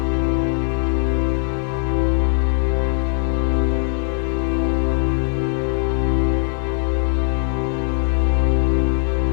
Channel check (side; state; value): right; silent; 65 dB below the other